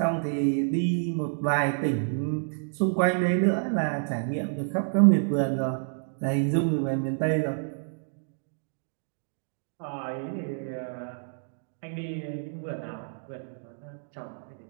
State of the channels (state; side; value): silent; left; digital silence